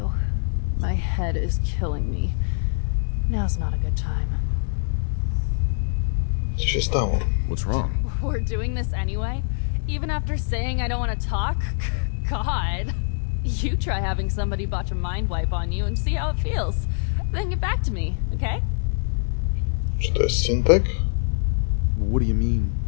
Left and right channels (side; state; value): right; silent; digital silence